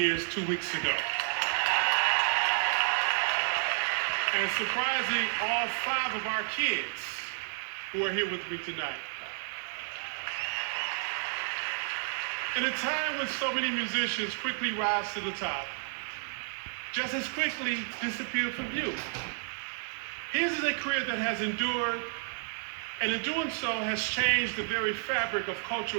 2 weeks ago. And surprising all 5 of our kids who are here with me tonight. In a time when so many musicians quickly rise to the top, just as quickly disappear from view, his is a career that has endured, and in doing so has changed the very fabric of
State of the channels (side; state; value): left; silent; 57 dB below the other